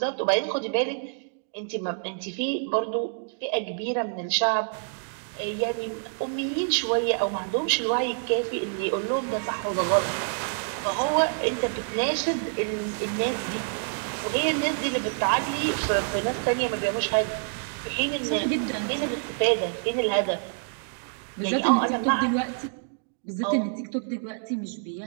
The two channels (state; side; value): silent; left; digital silence